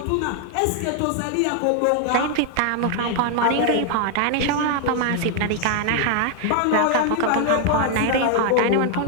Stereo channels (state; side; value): different; both; correlation 0.00